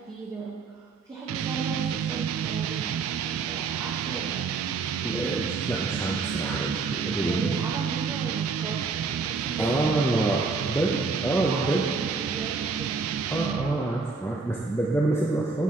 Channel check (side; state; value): left; quieter; 4.3 dB